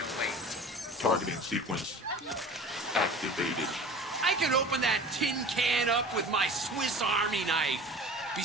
Targeting sequence activated. I can open that tin can up with my Swiss Army knife.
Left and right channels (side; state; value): both; normal; correlation 0.40